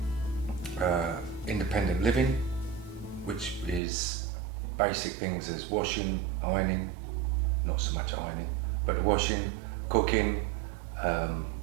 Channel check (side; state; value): left; drops out; at 3.8 s